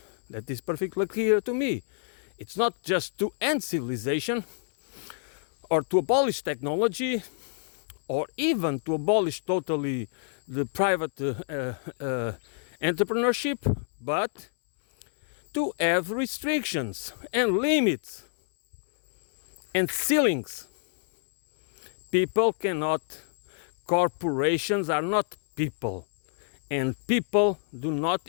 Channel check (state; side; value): silent; right; 60 dB below the other